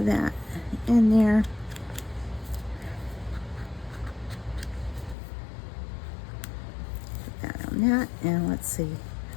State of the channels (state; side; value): drops out; right; at 5.2 s